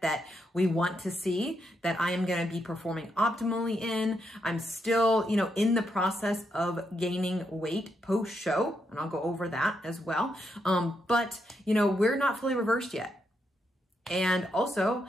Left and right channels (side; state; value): both; normal; correlation 0.80